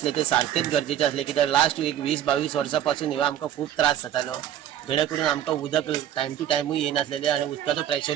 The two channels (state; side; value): quieter; left; 11.0 dB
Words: ते सारखेच गरजेचे असले कित्याक लास्ट एक 20-22 वर्सां ह्यो आमकां खूब त्रास जातालो, जेणे करून आमकां उदक टायम टू टायमूय येनासलेलें आनी उदकाचो